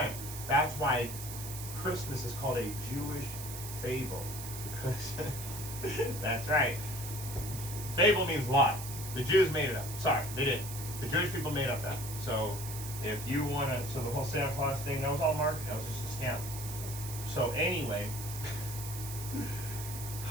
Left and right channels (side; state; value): right; noise; hiss, 9 dB below the sound